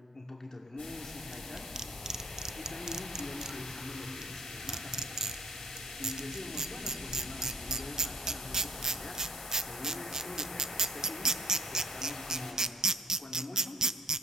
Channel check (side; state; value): both; normal; correlation 0.47